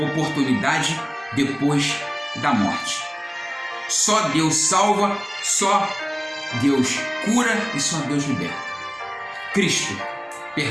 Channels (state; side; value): identical; both; correlation 1.00